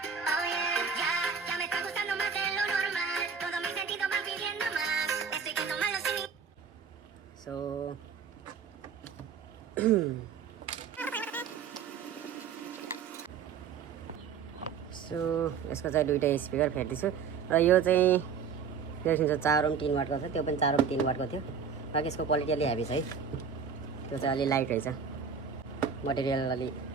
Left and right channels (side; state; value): left; quieter; 6.5 dB